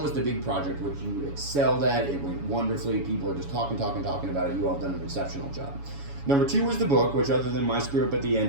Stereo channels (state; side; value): late; left; 7.1 ms